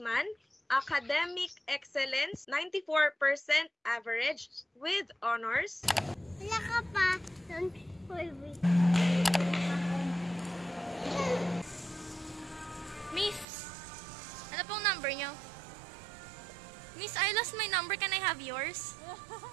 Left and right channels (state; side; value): drops out; left; at 13.5 s